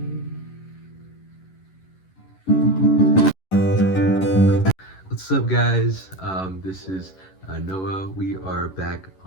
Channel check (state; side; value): late; right; 11 ms